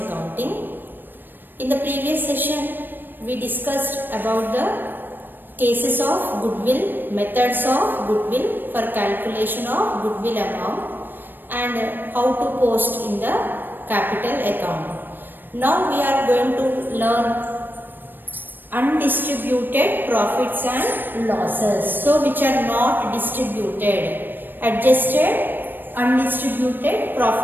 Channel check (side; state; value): left; late; 0.094 ms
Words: In the previous session, we discussed about the cases of goodwill, methods of goodwill for calculation of goodwill amount and how to post in the capital account. Now we are going to learn undistributed profits and losses. So which are not distributed, adjusted undistributed